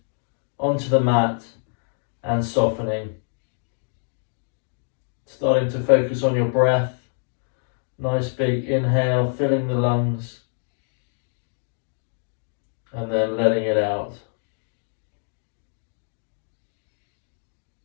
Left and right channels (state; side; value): silent; right; digital silence